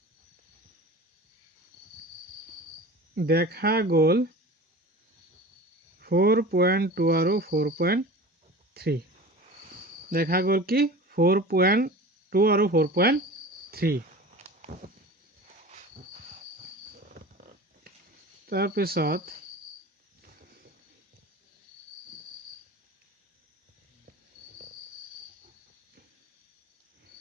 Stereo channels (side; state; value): both; normal; correlation 0.37